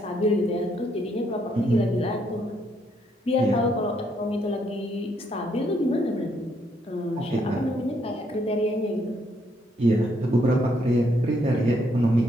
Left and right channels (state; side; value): normal; both; correlation 0.72